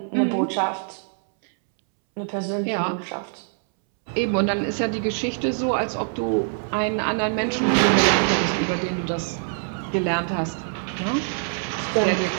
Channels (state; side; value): silent; left; 63 dB below the other